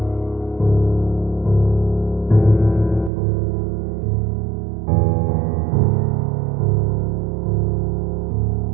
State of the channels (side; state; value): left; drops out; at 3.1 s